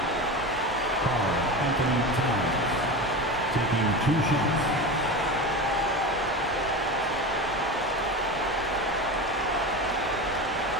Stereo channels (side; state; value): both; normal; correlation 0.25